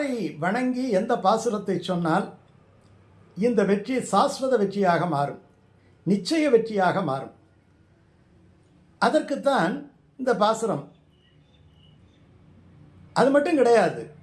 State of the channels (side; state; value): both; identical; correlation 1.00